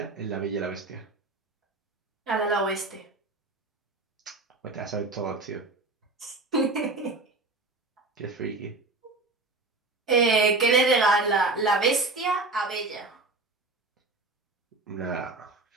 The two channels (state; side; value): quieter; left; 3.4 dB